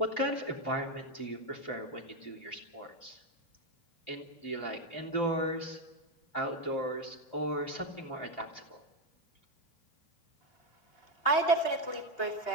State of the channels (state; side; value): late; right; 2.8 ms